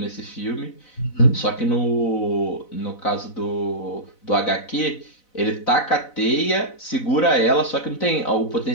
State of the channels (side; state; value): right; late; 4.0 ms